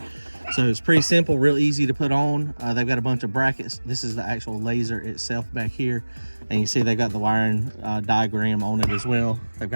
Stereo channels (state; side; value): inverted; both; correlation -1.00